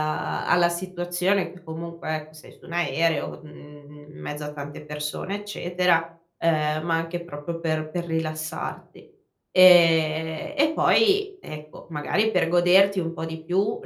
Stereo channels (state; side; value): identical; both; correlation 1.00